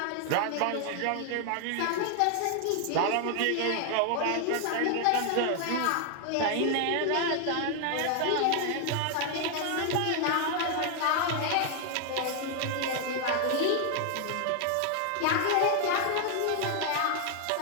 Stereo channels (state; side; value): different; both; correlation 0.00